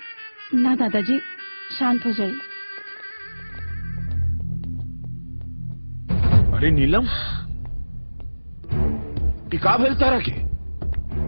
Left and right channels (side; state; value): both; inverted; correlation -1.00